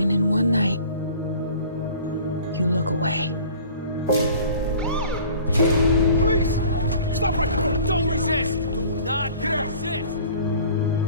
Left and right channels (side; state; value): both; inverted; correlation -0.47